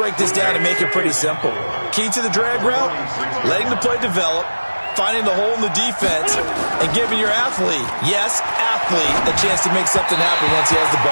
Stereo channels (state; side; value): inverted; both; correlation -1.00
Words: this down and make it pretty simple. Key to the drag route, letting the play develop, finding the hole in the defense, and giving your athlete, yes, athlete, a chance to make something happen once he has the